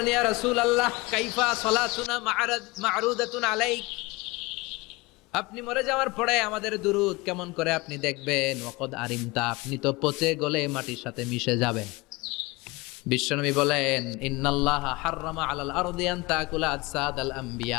ইয়া রাসূলুল্লাহ কাইফা সালাতুনা মা'রুদাতুন আলাইক, আপনি মরে যাওয়ার পরে আমাদের দুরূদ কেমন করে আপনি দেখবেন? ওয়াকাদ আরিমতা, আপনি তো পচে গলে মাটির সাথে মিশে যাবেন। বিশ্বনবী বলেন, ইন্নাল্লাহা হাররামা আলাল আরদি আন তাকুলা আজসাদাল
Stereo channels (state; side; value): quieter; right; 23.3 dB